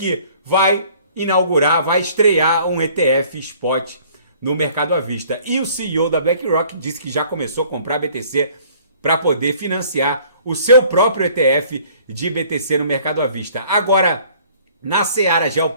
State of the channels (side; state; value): both; inverted; correlation -0.55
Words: vai estrear um ETF spot no mercado à vista. E o CEO da BlackRock disse que já começou a comprar BTC para poder financiar o seu próprio ETF de BTC no mercado à vista. Agora, na seara